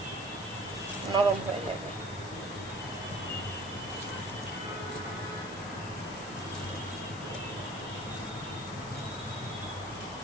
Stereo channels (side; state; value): left; noise; hiss, 13 dB below the sound